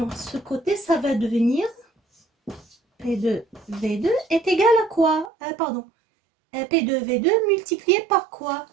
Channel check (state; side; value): drops out; left; at 5.3 s